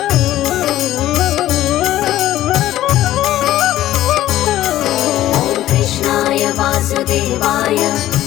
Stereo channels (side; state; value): right; quieter; 13.9 dB